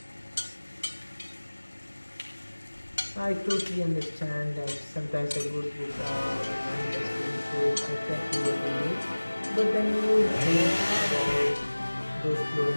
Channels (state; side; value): inverted; both; correlation -1.00